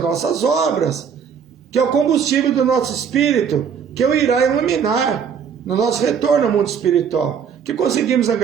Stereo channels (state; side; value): quieter; left; 7.2 dB